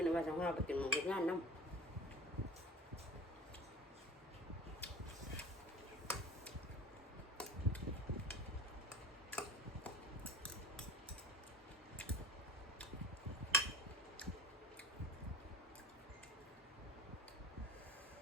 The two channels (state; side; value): normal; both; correlation 0.39